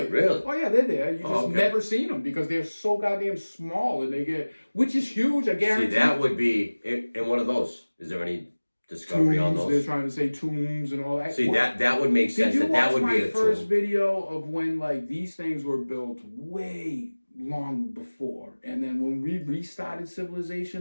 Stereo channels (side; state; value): both; inverted; correlation -1.00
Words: really? Oh yeah, they're there. You just never seen them because they're so goddamn small, and which is huge. I guarantee. See, that would be in one of those. Is there any discovery on those? They're trying to say tombs and all that. See, that would make sense. That would be a tomb. Did you watch my first video of when like these things were built way long before, and then when we restarted